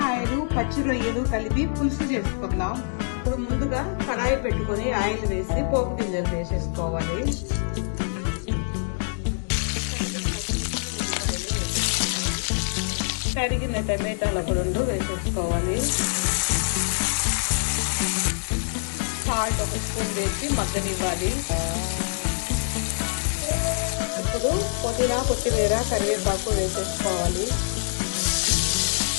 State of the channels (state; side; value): silent; right; digital silence